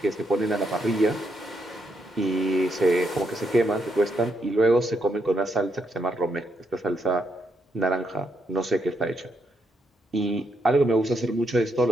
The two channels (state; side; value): normal; both; correlation 0.79